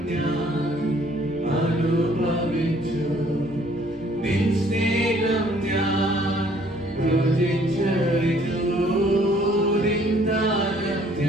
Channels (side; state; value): right; noise; rumble, 26 dB below the sound